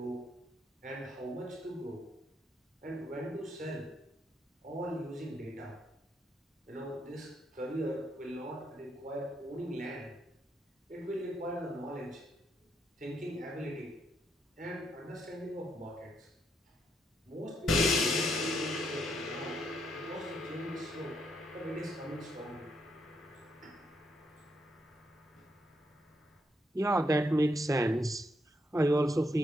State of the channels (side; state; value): both; normal; correlation 0.77